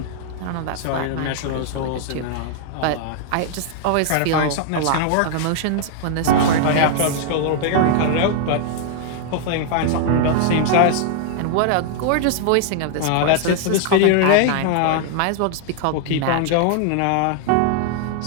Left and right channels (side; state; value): both; different; correlation -0.01